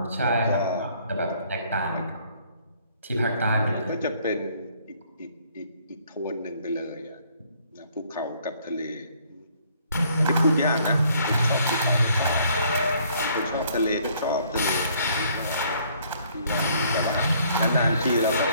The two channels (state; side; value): inverted; both; correlation -0.63